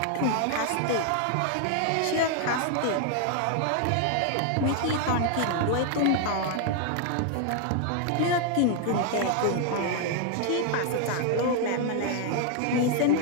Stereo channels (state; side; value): different; both; correlation 0.00